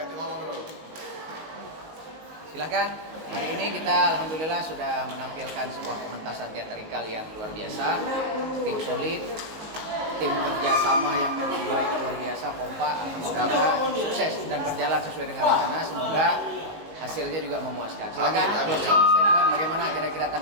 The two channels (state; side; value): late; left; 19 ms